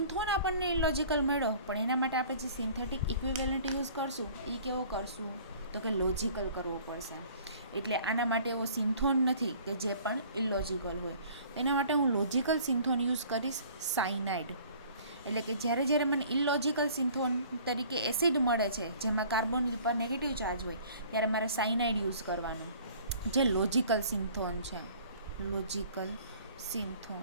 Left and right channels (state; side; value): inverted; both; correlation -0.51